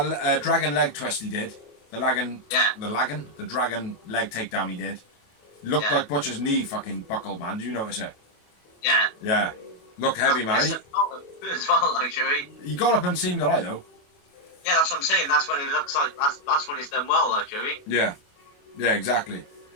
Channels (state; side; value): late; right; 28 ms